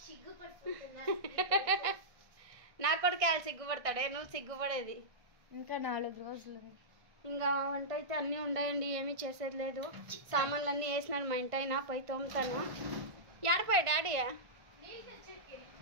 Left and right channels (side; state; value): left; late; 1.5 ms